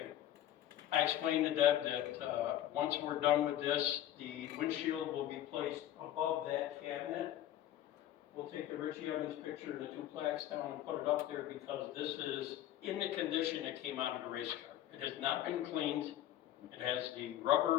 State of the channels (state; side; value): quieter; right; 12.5 dB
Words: I explained to Deb that once we're done with this, the windshield will be placed above that cabinet. We'll take the Richie Evans picture and the 2 plaques down and put it up there because this is in the condition it came out of the race car. It has not been cleaned. It has the